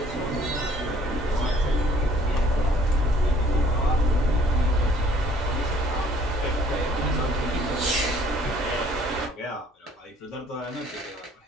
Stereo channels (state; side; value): normal; both; correlation 0.58